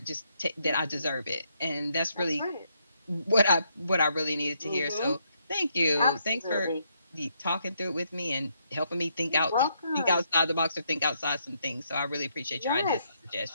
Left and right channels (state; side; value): inverted; both; correlation -0.75